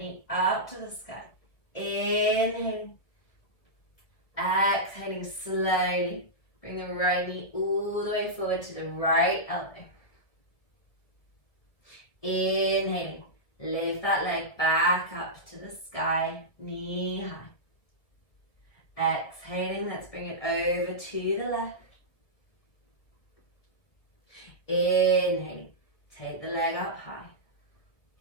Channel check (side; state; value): right; late; 1.9 ms